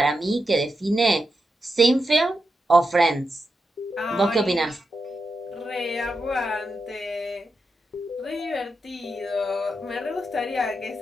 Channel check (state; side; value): normal; both; correlation 0.87